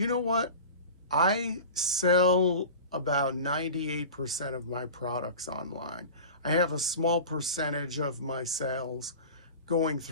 know what? I sell about 98% of my products online. I have a small percentage of my sales going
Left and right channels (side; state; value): both; inverted; correlation -0.35